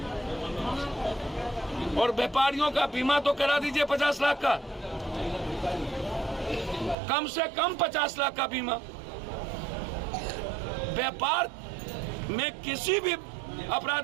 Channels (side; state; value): left; drops out; at 7.0 s